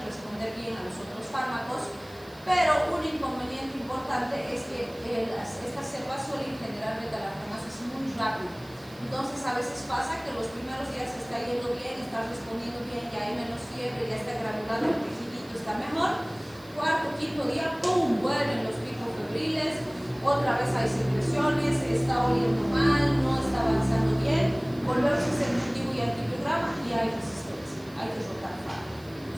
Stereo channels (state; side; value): noise; right; hiss, 25 dB below the sound